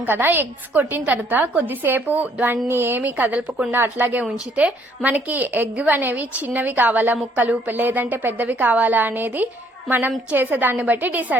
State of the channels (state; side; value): normal; both; correlation 0.64